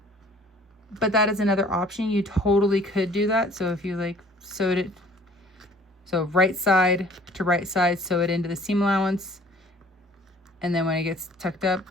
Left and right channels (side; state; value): both; normal; correlation 0.53